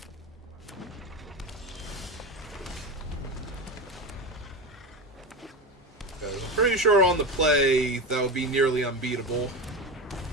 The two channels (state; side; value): normal; both; correlation 0.22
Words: I'm pretty sure on the play, that would be nearly unbeatable.